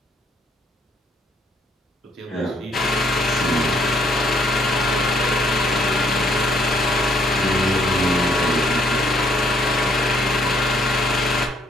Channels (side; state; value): both; normal; correlation 0.66